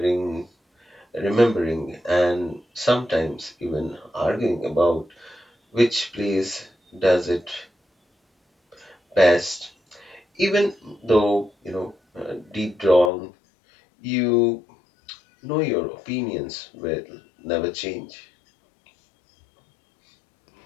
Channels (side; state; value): right; drops out; at 13.1 s